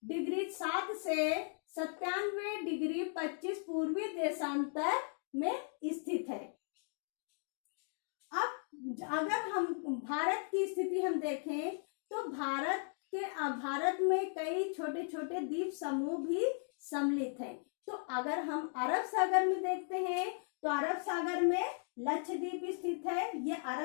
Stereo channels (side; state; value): right; silent; 53 dB below the other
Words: डिग्री 7 से 97 डिग्री 25 पूर्वी देशांतर में स्थित है। अब अगर हम भारत की स्थिति हम देखें, तो भारत में कई छोटे छोटे द्वीप समूह भी सम्मिलित हैं। तो अगर हम अरब सागर में देखते हैं, तो अरब सागर में लक्षद्वीप स्थित है। ये